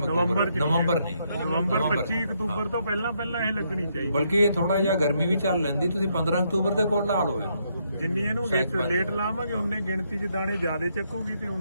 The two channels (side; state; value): both; inverted; correlation -0.75